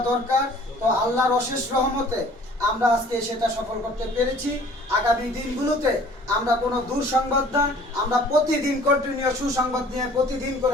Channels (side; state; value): both; normal; correlation 0.52